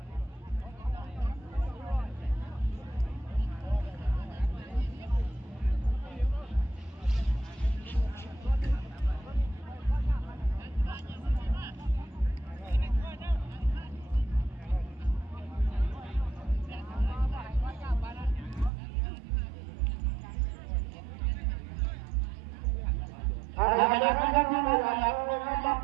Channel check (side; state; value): left; drops out; at 18.7 s